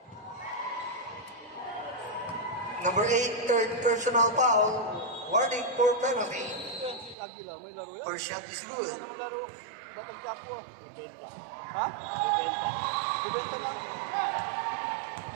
Number 8, third personal foul. Warning for penalty. Lagi lang, may laro yan. Or shot is good. May laro. Bakit ka po? Bebenta. Ha? Bebenta. Bibenta lang.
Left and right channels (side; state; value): left; drops out; at 7.2 s